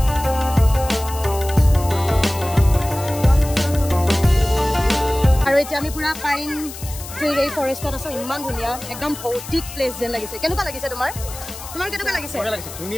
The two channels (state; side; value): noise; left; hiss, 13 dB below the sound